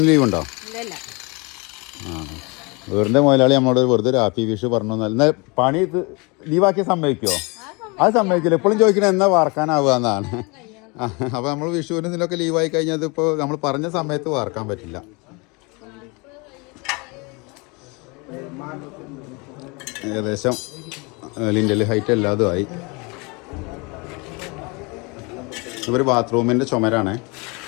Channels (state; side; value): quieter; right; 28.9 dB